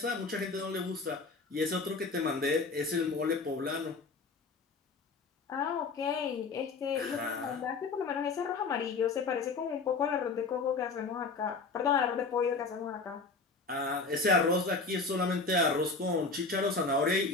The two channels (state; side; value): quieter; right; 4.2 dB